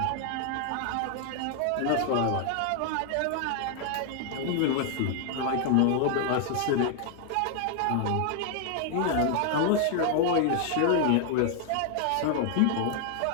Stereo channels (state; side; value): different; both; correlation 0.00